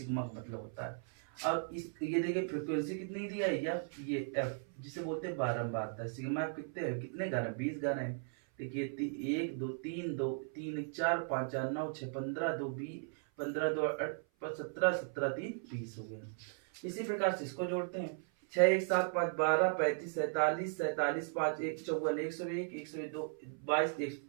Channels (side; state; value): left; silent; 53 dB below the other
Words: का मतलब होता है। और ये देखिए फ्रीक्वेंसी कितनी दिया है, ये एफ जिसे बोलते हैं बारंबारता। सिग्मा एफ कितने घर है, 20 घर है। देखिए 1 2 3 2 3 1 4 5 4 9 6 15 2 20 15 2 17 17 3 20 हो गया। इसी प्रकार से इसको जोड़ते हैं, 6 1 7 5 12 35 47 47 5 1 54 101 102 22